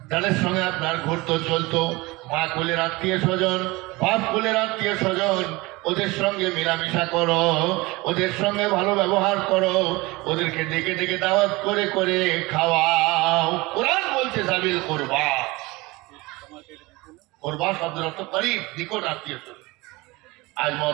যাদের সঙ্গে আপনার ঘুরতো চলতো, মা কুলের আত্মীয় স্বজন, বাপ কুলের আত্মীয় স্বজন, ওদের সঙ্গে মেলামেশা করো, ওদের সঙ্গে ভালো ব্যবহার করো, ওদেরকে ডেকে ডেকে দাওয়াত করে করে খাওয়াও। কোরআন বলছে সাবিল করবা, করবা শব্দের অর্থ করিব, নিকট আত্মীয় স্বজন। আজ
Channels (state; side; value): quieter; left; 22.6 dB